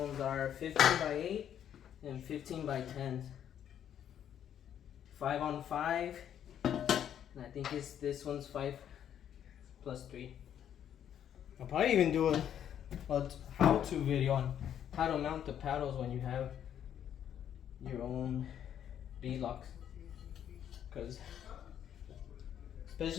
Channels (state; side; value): quieter; right; 9.7 dB